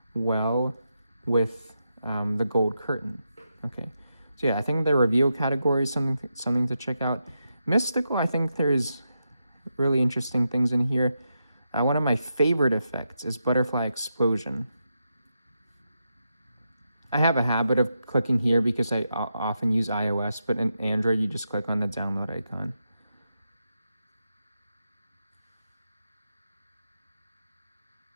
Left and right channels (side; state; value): both; inverted; correlation -0.85